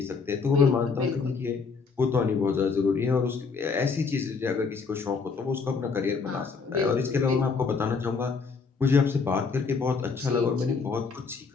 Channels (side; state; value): right; quieter; 5.0 dB